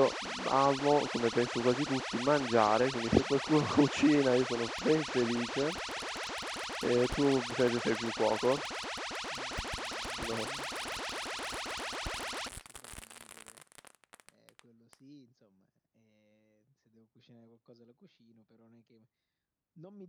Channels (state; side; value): identical; both; correlation 1.00